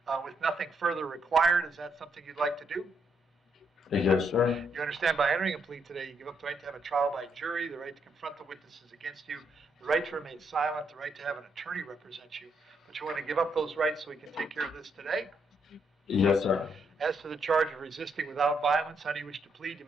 with nothing further required. Is that something you'd like to do? Yes, sir. You understand by entering a plea today, you give up the right to have a trial by jury, the right to confront the witnesses against you, the right to remain silent, the right to have an attorney represent you. But you want to give up those rights so we can take care of this today? Yes, sir. As to the charge of resisting without violence, how do you wish to plead? You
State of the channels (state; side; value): normal; both; correlation 0.76